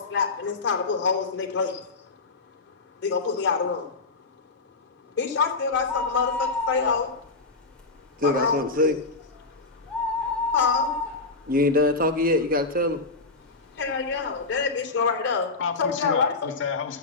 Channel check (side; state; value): right; quieter; 3.7 dB